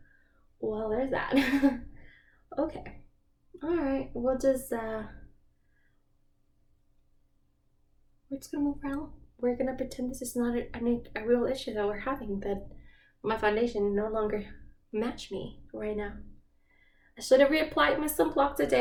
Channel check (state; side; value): identical; both; correlation 1.00